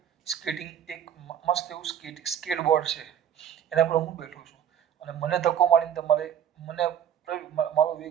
સ્કેટિંગ એક મસ્ત એવું સ્કેટબોર્ડ છે, એના પર હું બેઠો છું અને મને ધક્કો મારીને તમારે મને મારો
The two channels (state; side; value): quieter; left; 9.3 dB